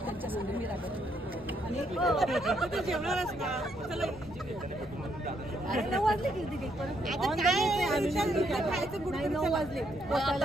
त्यांच्या संग मी राहत जेवणार असता. अरे 9 वाजले किती परत 9 वाजले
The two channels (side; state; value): left; noise; rumble, 20 dB below the sound